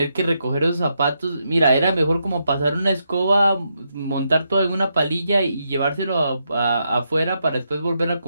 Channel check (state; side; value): inverted; both; correlation -0.81